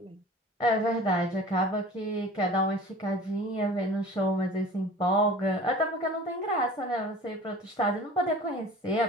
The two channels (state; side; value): normal; both; correlation 0.42